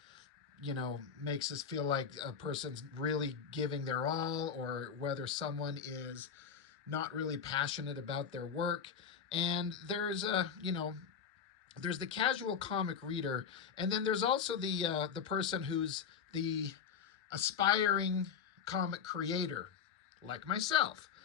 makes us feel like a person's really giving their all, or whether someone is not really passionate about their work. And there's the casual comic reader, and then there's also the person who's the aspiring comic creator, like myself.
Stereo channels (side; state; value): right; quieter; 7.0 dB